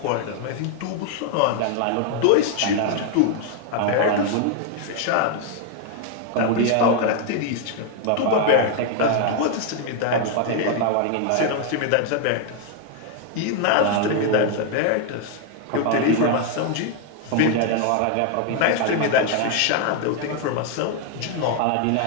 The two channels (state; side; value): different; both; correlation 0.00